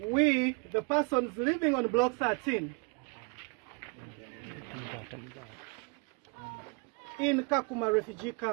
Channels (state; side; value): quieter; left; 33.7 dB